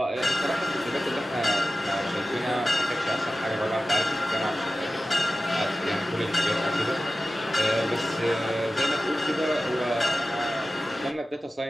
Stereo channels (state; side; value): normal; both; correlation 0.95